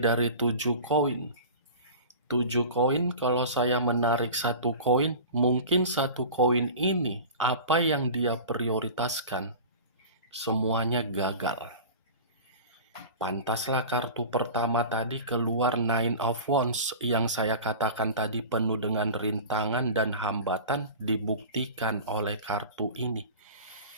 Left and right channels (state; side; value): inverted; both; correlation -0.36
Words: 7 koin. 7 koin, kalau saya menarik satu koin, mungkin satu koin ini apa yang dia prioritaskan semuanya gagal. Pantaslah kartu pertama tadi keluar Nine of Wands yang saya katakan tadi penuh dengan rintangan dan hambatan dibuktikan oleh kartu ini.